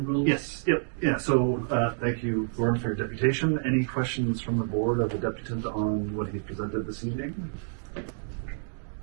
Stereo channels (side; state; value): left; silent; digital silence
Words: rules. Yes, yep, yeah. So thank you, Gordon, for your deputation. Any questions from the board of the deputant on what he presented this evening?